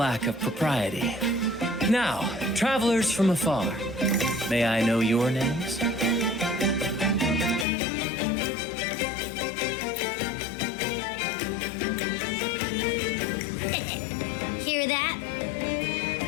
of propriety. Now, travelers from afar, may I know your names? Hear that?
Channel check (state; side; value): drops out; right; at 7.7 s